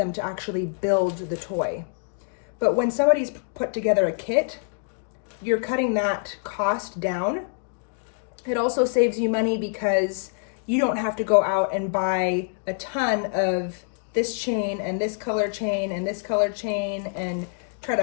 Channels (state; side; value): silent; right; digital silence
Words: to actually build the toy. But when somebody's put together a kit, you're cutting that cost down. It also saves you money because you don't have to go out and buy a ton of this chain and this color chain and this color chain and try